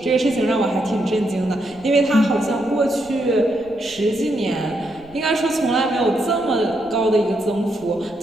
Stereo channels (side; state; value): right; noise; rumble, 26 dB below the sound